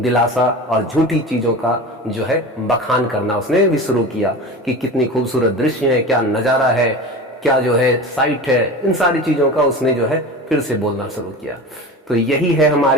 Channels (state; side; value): normal; both; correlation 0.31